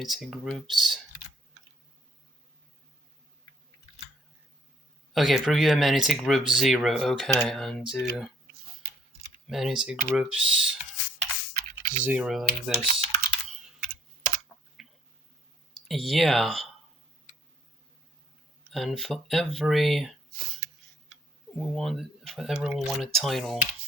groups. Okay, preview amenity group 0. Okay, and do amenity groups 0 like this. Yeah. And for everyone want a title.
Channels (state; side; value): normal; both; correlation 0.64